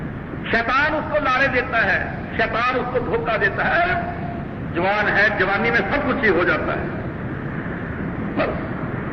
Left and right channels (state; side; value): identical; both; correlation 1.00